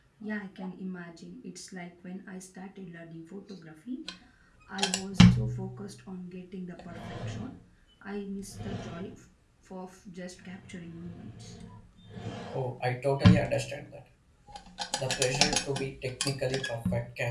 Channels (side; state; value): both; identical; correlation 1.00